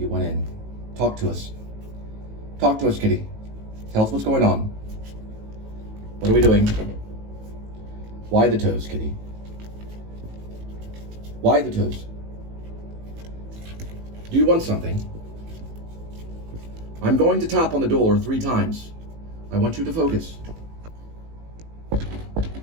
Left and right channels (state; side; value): late; left; 18 ms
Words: went in. Talk to us. Talk to us, Kitty. Tell us what's going on. What are we doing? Why the toes, Kitty? Why the toes? Do you want something? I'm going to tap on the door 3 times. I want you to focus.